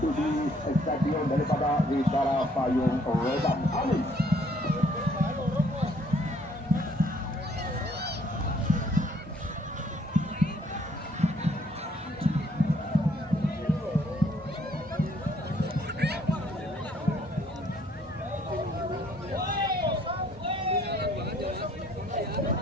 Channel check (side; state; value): both; normal; correlation 0.64